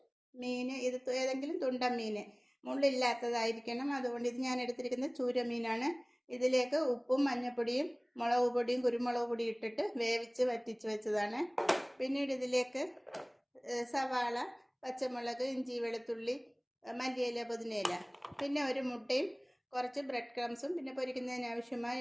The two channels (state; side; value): identical; both; correlation 1.00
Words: മീൻ, ഇത് ഏതെങ്കിലും തുണ്ടൻ മീൻ, മുള്ളില്ലാത്തതായിരിക്കണം. അതുകൊണ്ട് ഇത് ഞാൻ എടുത്തിരിക്കുന്നത് ചൂര മീനാണ്. ഇതിലേക്ക് ഉപ്പും മഞ്ഞൾപ്പൊടിയും മുളക് പൊടിയും കുരുമുളക് പൊടിയും ഇട്ടിട്ട് വേവിച്ച് വറ്റിച്ച് വെച്ചതാണ്. പിന്നീട് ഇതിലേക്ക് സവാള, പച്ചമുളക്, ഇഞ്ചി, വെളുത്തുള്ളി, മല്ലിയില, പുതിനയില, പിന്നെ ഒരു മുട്ടയും കുറച്ച് ബ്രെഡ് ക്രംസും പിന്നെ പൊരിക്കുന്നതിന്